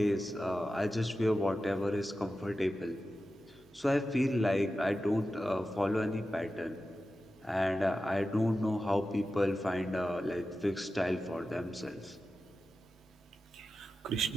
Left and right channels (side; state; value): both; normal; correlation 0.93